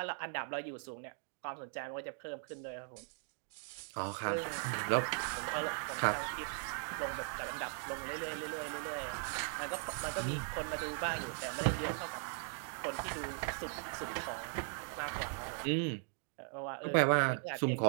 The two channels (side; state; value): left; silent; 52 dB below the other